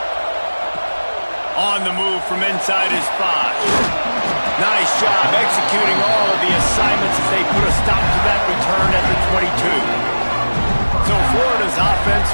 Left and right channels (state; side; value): inverted; both; correlation -1.00